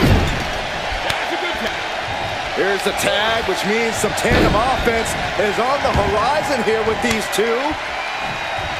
Here's the tag, which means some tandem offense is on the horizon here with these two.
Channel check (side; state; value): both; identical; correlation 1.00